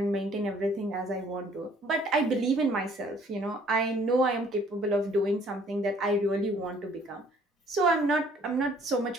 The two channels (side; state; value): both; normal; correlation 0.59